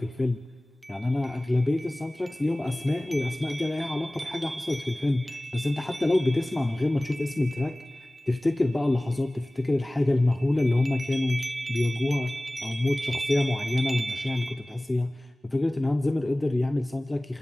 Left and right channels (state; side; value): normal; both; correlation 0.98